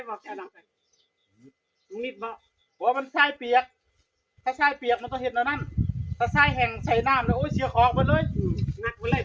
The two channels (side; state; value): both; identical; correlation 1.00